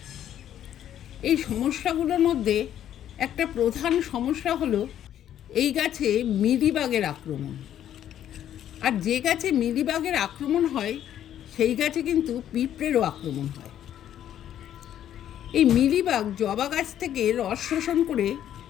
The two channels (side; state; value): right; quieter; 10.8 dB